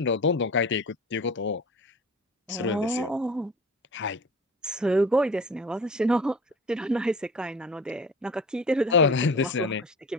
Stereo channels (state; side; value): normal; both; correlation 0.38